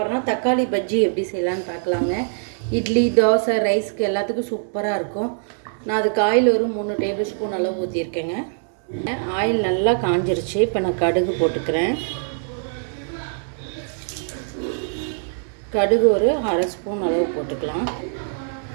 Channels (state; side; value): silent; left; digital silence